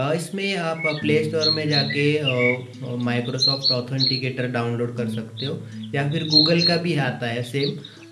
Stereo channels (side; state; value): both; identical; correlation 1.00